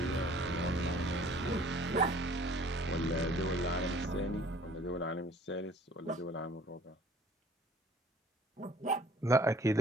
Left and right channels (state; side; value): normal; both; correlation 0.52